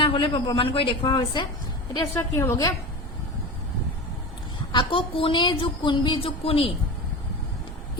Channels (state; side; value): normal; both; correlation 0.27